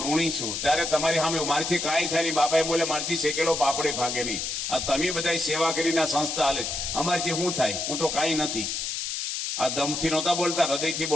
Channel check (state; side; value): noise; left; hiss, 3 dB below the sound